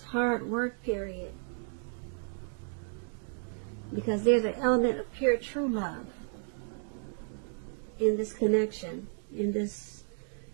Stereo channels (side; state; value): left; silent; 56 dB below the other